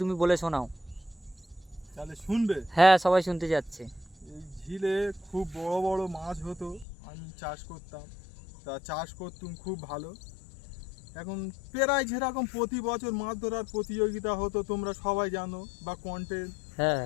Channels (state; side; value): drops out; right; at 6.9 s